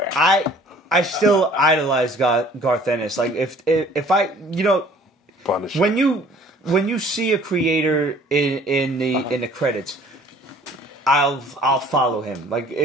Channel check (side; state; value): both; normal; correlation 0.53